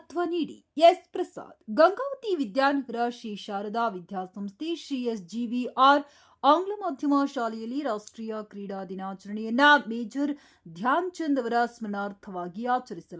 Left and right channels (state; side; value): identical; both; correlation 1.00